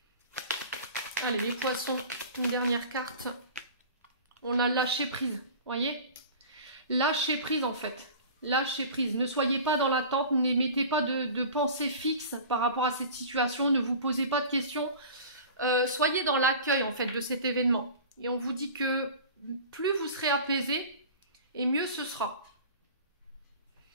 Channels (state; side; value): inverted; both; correlation -0.39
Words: Allez, les poissons, une dernière carte. On a lâché prise, voyez? Lâcher prise, en fait. Lâchez prise, ne soyez pas dans l'attente, n'émettez pas de pensée fixe par rapport à cette situation, ne vous posez pas de questions, soyez dans l'accueil en fait de cet événement. Et on vous dit que plus vous serez apaisé et mieux ce sera.